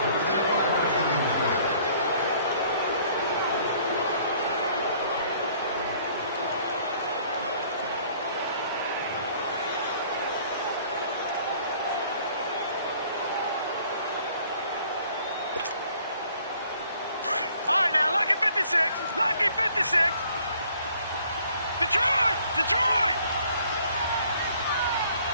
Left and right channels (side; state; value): both; inverted; correlation -0.58